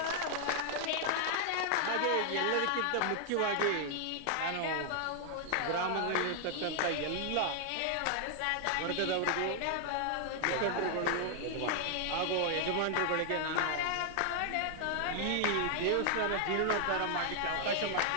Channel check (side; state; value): both; different; correlation 0.00